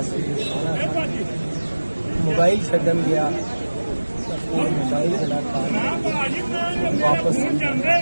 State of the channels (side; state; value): both; inverted; correlation -1.00